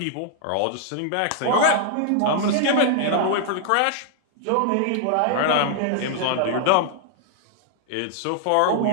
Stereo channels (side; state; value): both; different; correlation 0.00